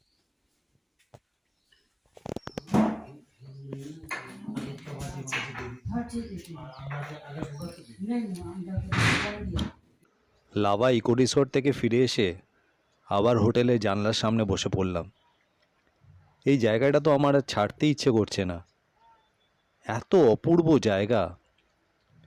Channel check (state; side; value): identical; both; correlation 1.00